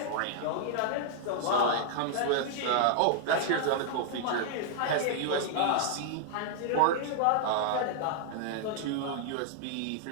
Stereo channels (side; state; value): both; different; correlation -0.01